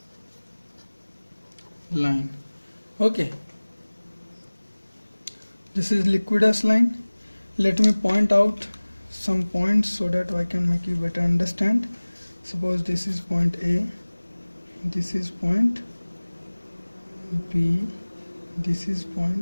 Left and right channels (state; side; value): inverted; both; correlation -1.00